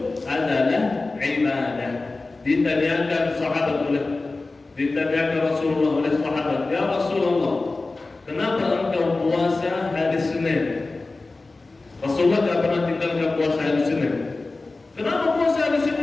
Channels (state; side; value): quieter; right; 3.4 dB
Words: adalah ibadah. Ditanyakan Rasulullah oleh sahabat, ya Rasulullah, kenapa engkau puasa hari Senin? Rasulullah tidak pernah tinggalkan puasa hari Senin. Kenapa puasa hari